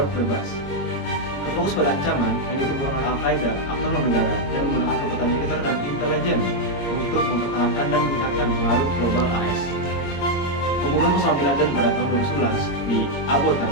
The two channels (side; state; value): right; late; 22 ms